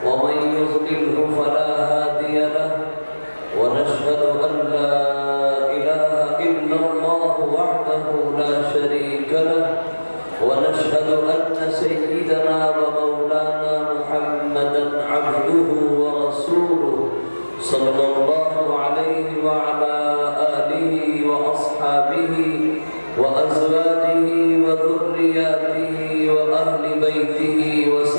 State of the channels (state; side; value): inverted; both; correlation -1.00